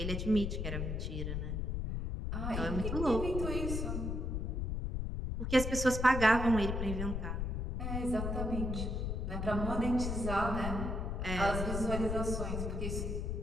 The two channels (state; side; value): noise; left; rumble, 1 dB below the sound